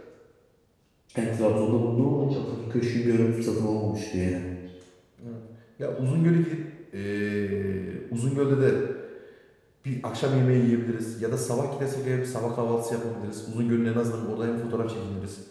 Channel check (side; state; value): both; identical; correlation 1.00